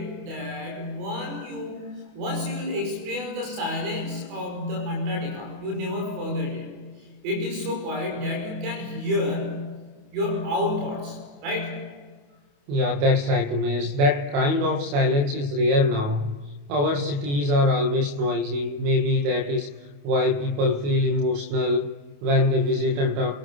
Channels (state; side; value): late; left; 28 ms